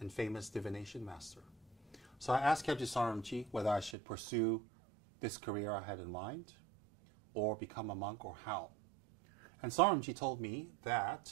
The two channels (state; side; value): drops out; left; at 4.0 s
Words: and famous divination master. So I asked Kyabje Saronji whether I should pursue this career I had in mind, or become a monk, or how. And Saronji told me